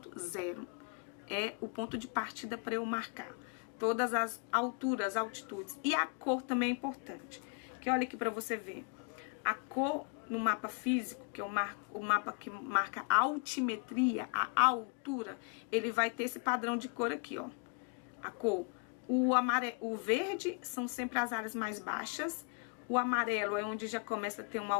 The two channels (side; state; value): right; quieter; 37.0 dB